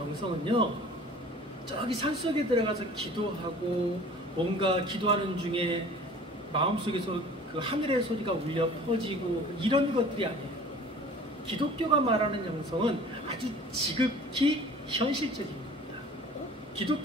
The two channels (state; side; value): normal; both; correlation 0.46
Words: 저기 산속에 들어가서 기도하고 뭔가 기도하는 중에 마음속에서 그 하늘의 소리가 울려 퍼지고 이런 것들이 아니에요. 기독교가 말하는 영성은 아주 지극히 현실적인 겁니다.